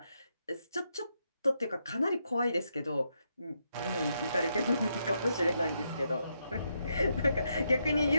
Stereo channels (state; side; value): inverted; both; correlation -0.80